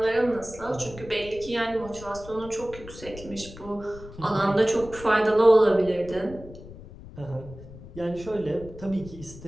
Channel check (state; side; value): noise; left; rumble, 16 dB below the sound